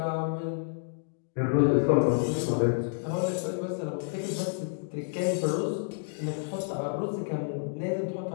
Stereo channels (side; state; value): right; silent; digital silence